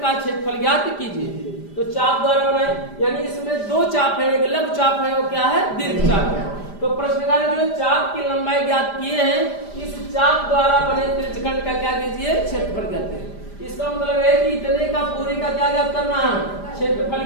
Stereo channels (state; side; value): late; right; 5.0 ms